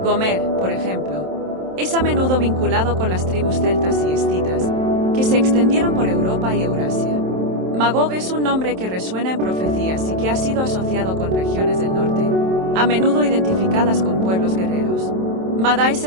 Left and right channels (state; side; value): late; left; 27 ms